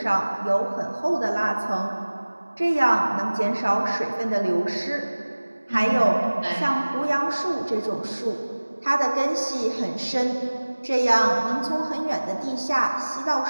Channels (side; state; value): both; inverted; correlation -1.00